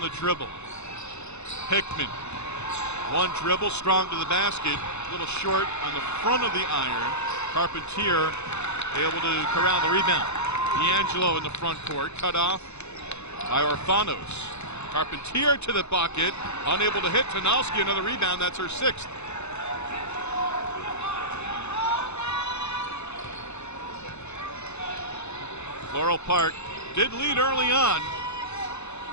the dribble. Hickman, 1 dribble, strong to the basket, a little short on the front of the iron. Carpentier able to corral the rebound. D'Angelo in the front court, cut off by Orfanos. Carpentier to the bucket, unable to hit. Tanowski, another rebound, that's her 6th. Floral Park did lead early on.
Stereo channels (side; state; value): right; late; 0.81 ms